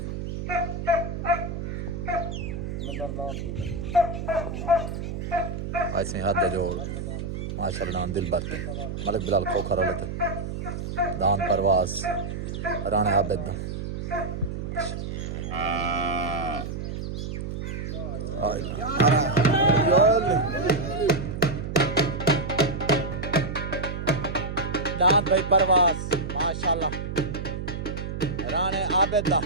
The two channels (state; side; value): noise; right; hum, 5 dB below the sound